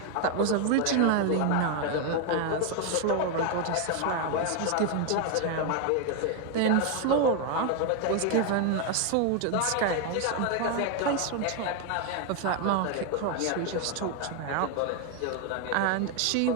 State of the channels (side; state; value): both; different; correlation 0.01